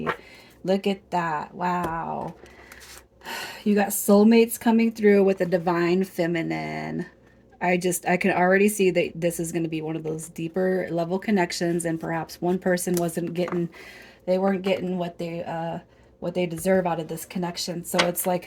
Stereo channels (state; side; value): identical; both; correlation 1.00